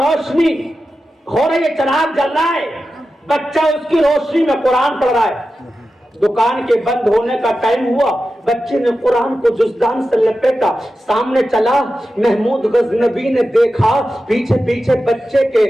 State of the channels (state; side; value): normal; both; correlation 0.92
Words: روشنی ہو رہی ہے، چراغ جل رہا ہے، بچہ اس کی روشنی میں قرآن پڑھ رہا ہے۔ دکان کے بند ہونے کا ٹائم ہوا، بچے نے قرآن کو جزدان سے لپیٹا، سامنے چلا، محمود غزنبی نے دیکھا پیچھے پیچھے بچے کے،